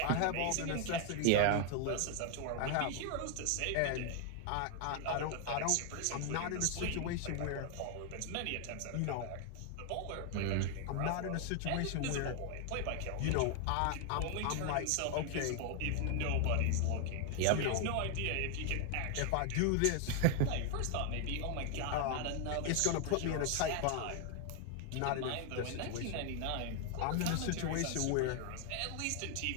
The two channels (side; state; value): both; different; correlation 0.00